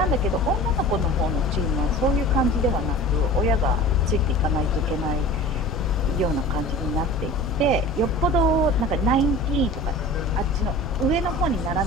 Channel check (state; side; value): normal; both; correlation 0.40